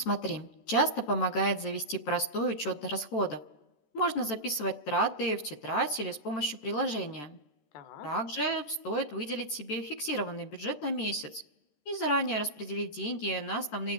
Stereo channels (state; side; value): late; right; 14 ms